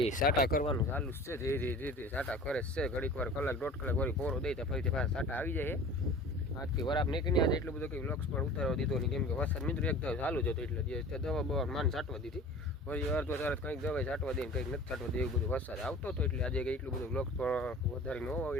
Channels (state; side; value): normal; both; correlation 0.41